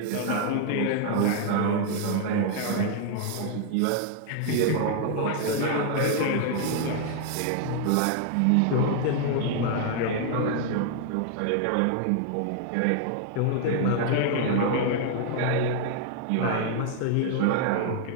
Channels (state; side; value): different; both; correlation 0.00